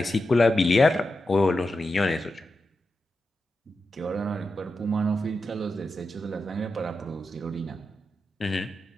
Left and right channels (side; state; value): both; normal; correlation 0.89